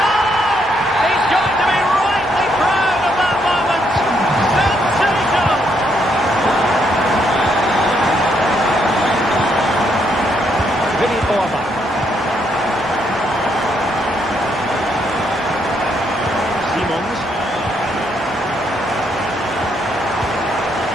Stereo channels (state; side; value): normal; both; correlation 0.74